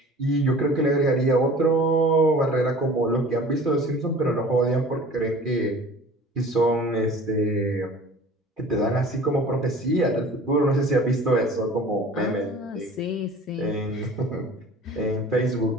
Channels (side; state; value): both; normal; correlation 0.44